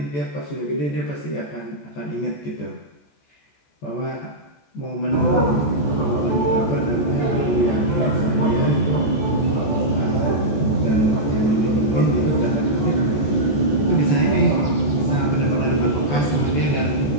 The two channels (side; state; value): right; late; 14 ms